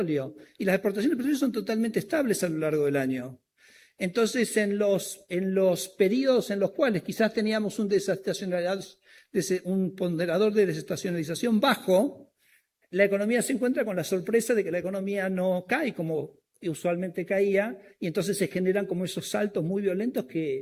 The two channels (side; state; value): both; identical; correlation 1.00